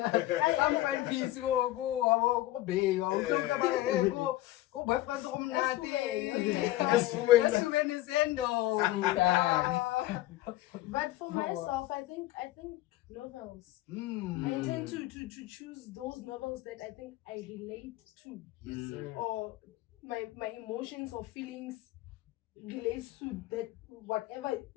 Some find peace. Go, babe. Go, boyfriend. But for myself, I think novels. I tend to choose those novels that I think I relate to. Yes, sir. Or my emotions or feelings relates to that whatever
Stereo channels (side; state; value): right; quieter; 16.4 dB